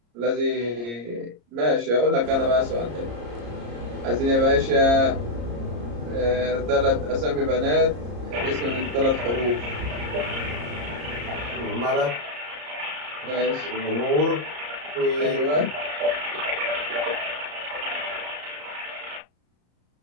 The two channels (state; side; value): late; left; 34 ms